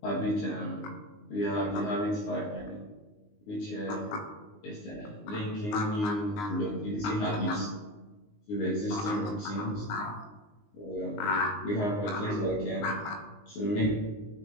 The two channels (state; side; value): late; right; 19 ms